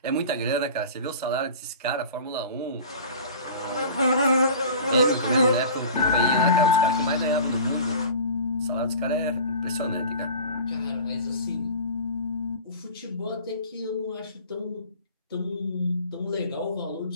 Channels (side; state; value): both; inverted; correlation -0.40